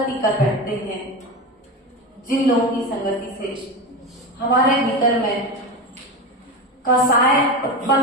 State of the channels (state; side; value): normal; both; correlation 0.21